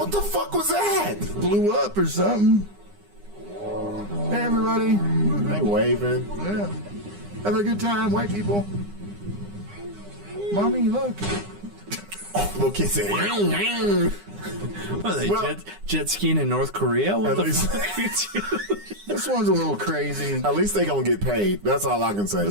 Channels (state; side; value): late; left; 9.8 ms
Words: the fuck was that? Blew up or something. Hey, everybody. They waving. Yeah. Have a good time, white people. Mommy, look. Little kid said, What are they, jet skiing in North Korea? What the fuck are you doing? This one's a little crazy. At least they gonna get paid. That's all I can say.